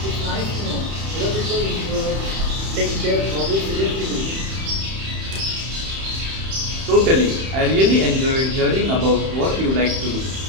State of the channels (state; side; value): late; left; 31 ms